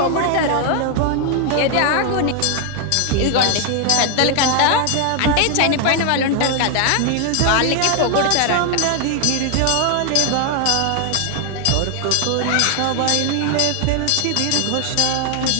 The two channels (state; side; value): different; both; correlation 0.00